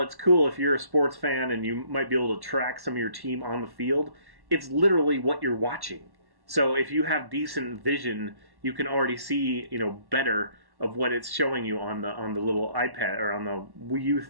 it's cool if you're a sports fan and you might be able to track some of your team on the field, it's literally what you're watching. So if you have decent vision, you can already see, better of what it's showing you on the little iPad or on the Wii U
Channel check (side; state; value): left; late; 1.1 ms